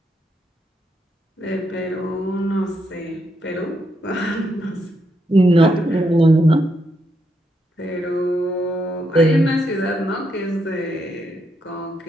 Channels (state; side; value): normal; both; correlation 0.79